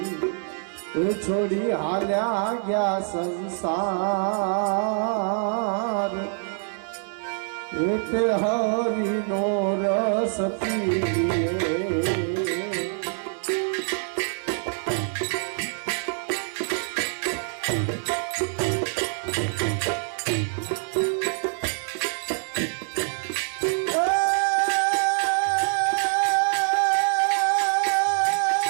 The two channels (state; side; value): silent; left; digital silence